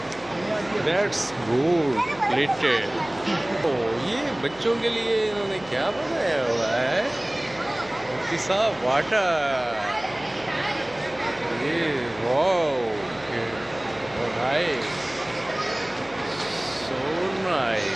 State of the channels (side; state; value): left; noise; hum, 22 dB below the sound